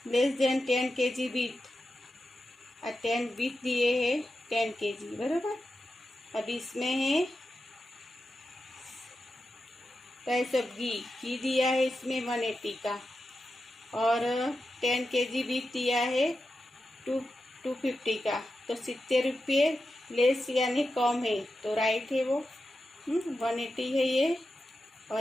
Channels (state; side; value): normal; both; correlation 0.90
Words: less then 10 kg with, 10 with दिए है 10 kg, बराबर। अब इसमें है प्राइस ऑफ घी दिया है इसमें 180 का और 10 kg विथ दिया है 250 का, तो 70 रुपये लेस यानी कम है, तो राइट है वो। 180 है ये